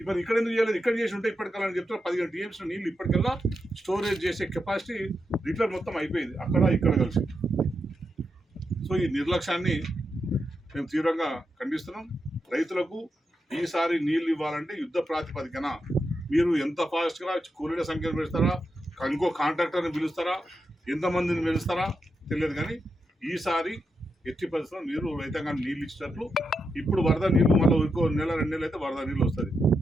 మరి ఇక్కడ ఎందుకు చేయలేదు? ఇక్కడ చేసి ఉంటే ఇప్పటికల్లా చెప్తారు 15 TMs నీళ్ళు ఇప్పటికల్లా స్టోరేజ్ చేసే కెపాసిటీ లీటర్ మొత్తం అయిపోయింది, అక్కడ ఇక్కడ కలిసి. సో ఈ నిర్లక్ష్యాన్ని మేము తీవ్రంగా ఖండిస్తున్నాం. రైతులకు ఈసారి నీళ్ళు ఇవ్వాలంటే యుద్ధ ప్రాతిపదికన మీరు ఎంత ఫాస్ట్గా కూలీల సంఖ్యను పెంచుతారా, ఇంకో కాంట్రాక్టర్ని పిలుస్తారా, ఎంతమందిని పిలుస్తారా తెలియదు, కానీ ఈసారి ఎట్టి పరిస్థితుల్లో మీరు రైతాంగాన్ని నీళ్ళు ఇచ్చినట్లు. ఇప్పుడు వరద నీళ్ళు మళ్ళీ ఇంకో 1-2 నెలలు అయితే వరద నీళ్ళు వస్తుంది,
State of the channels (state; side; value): normal; both; correlation 0.86